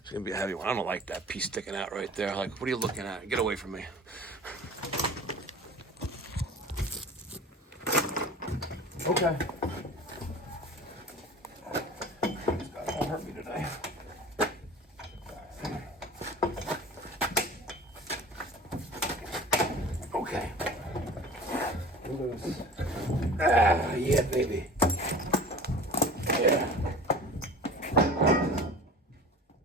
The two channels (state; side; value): normal; both; correlation 0.40